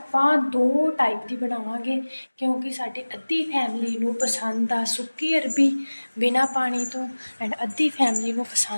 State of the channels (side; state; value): both; inverted; correlation -1.00